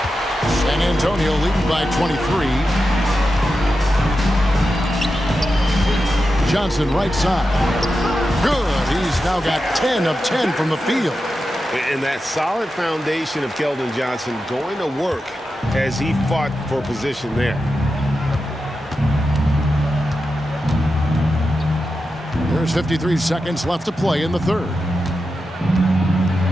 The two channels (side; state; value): both; normal; correlation 0.90